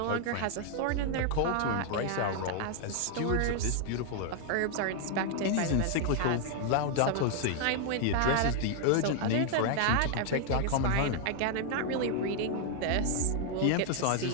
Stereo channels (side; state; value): both; different; correlation 0.00